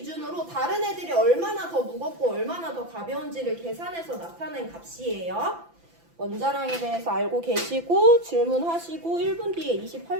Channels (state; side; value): late; left; 5.9 ms